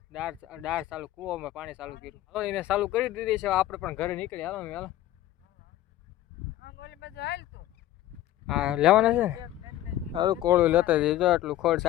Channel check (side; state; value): right; quieter; 13.8 dB